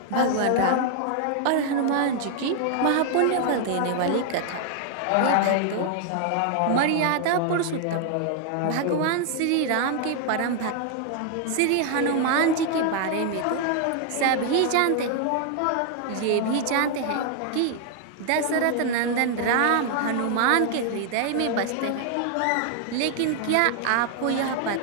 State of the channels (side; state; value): both; different; correlation 0.00